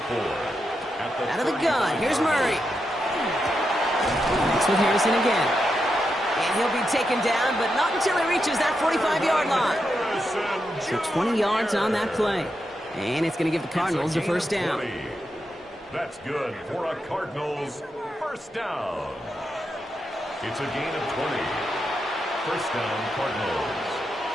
4. Out of the gun, here's Murray. Next with Harrison again. And he'll be taken down, but not until he reaches that 45-yard line. So 20 yards on that play. And it's going to give the Cardinals a 1st down. That's good for a Cardinals 1st down. It's a gain of 20. 1st down, Cardinals.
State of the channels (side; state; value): both; normal; correlation 0.85